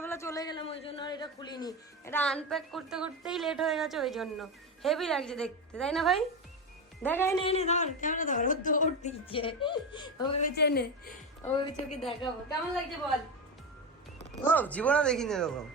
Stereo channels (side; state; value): both; normal; correlation 0.17